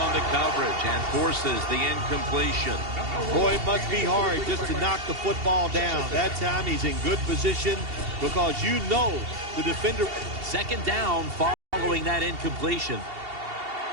the coverage and forces the incompletion. Boy, it must be hard just to knock the football down. That time he's in good position because you know the defender. Second down following that incompletion.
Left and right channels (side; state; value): left; late; 2.7 ms